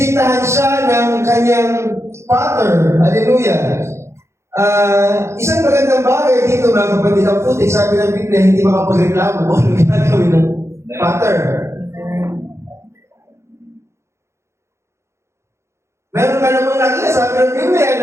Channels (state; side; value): late; left; 0.13 ms